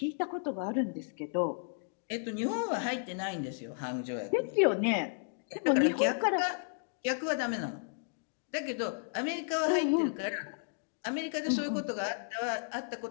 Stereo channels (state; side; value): silent; right; digital silence